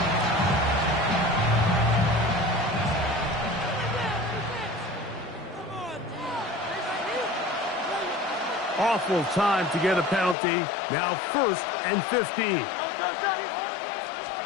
Awful time to get a penalty. Now first and 15.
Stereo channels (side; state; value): right; drops out; at 10.4 s